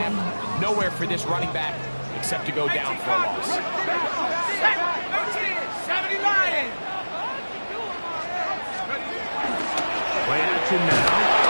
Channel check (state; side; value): inverted; both; correlation -1.00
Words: Nowhere for this running back except to go down for a loss. 70 Lions! Play action now.